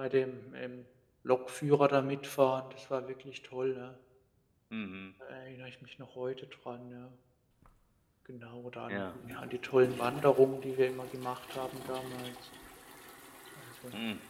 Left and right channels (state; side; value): identical; both; correlation 1.00